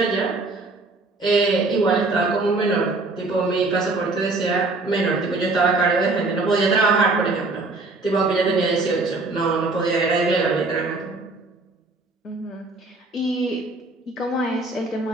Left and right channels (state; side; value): quieter; left; 3.4 dB